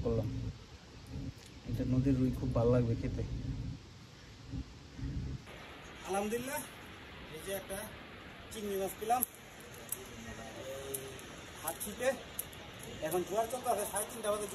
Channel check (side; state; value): both; identical; correlation 1.00